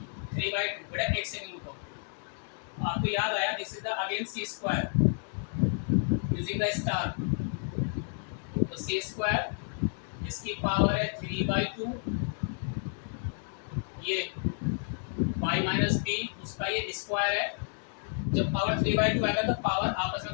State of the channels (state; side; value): silent; right; 57 dB below the other